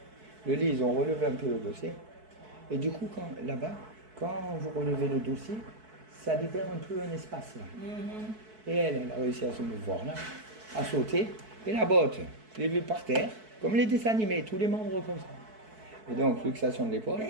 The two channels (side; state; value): left; late; 4.6 ms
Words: Le lit, ils ont relevé un peu le dossier. Et du coup, là-bas, quand vous relevez le dossier, ça libère un peu un espace là. Et elle a réussi à se mouvoir là, à sauter. Et la botte, je l'ai vue par terre, comme les dessins animés, tous les membres comme ça. Et donc, luxation de l'épaule.